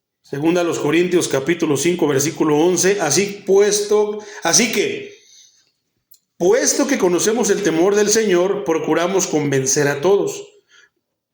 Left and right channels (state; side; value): identical; both; correlation 1.00